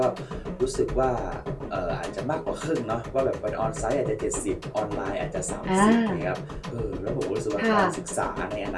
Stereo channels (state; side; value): identical; both; correlation 1.00